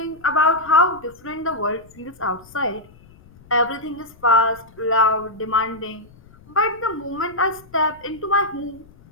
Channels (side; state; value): left; noise; rumble, 25 dB below the sound